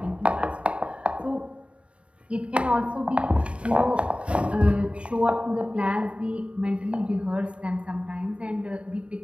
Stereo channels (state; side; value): late; left; 0.060 ms